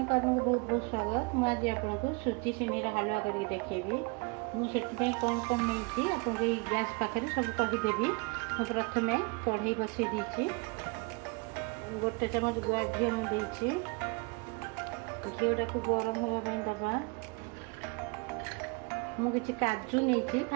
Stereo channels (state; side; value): quieter; left; 29.5 dB